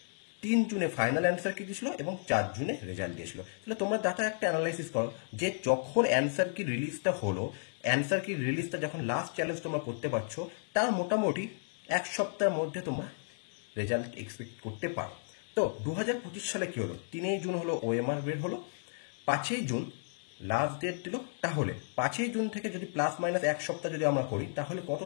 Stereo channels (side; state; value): right; silent; digital silence